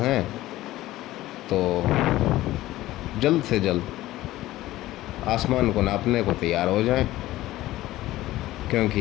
हैं तो जल्द से जल्द आसमान को नापने को तैयार हो जाएं,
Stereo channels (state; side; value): quieter; right; 16.2 dB